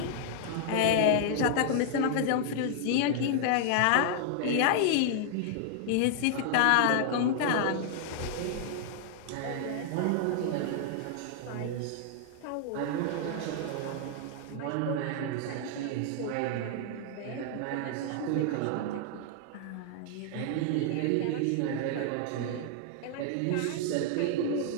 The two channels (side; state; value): both; different; correlation -0.01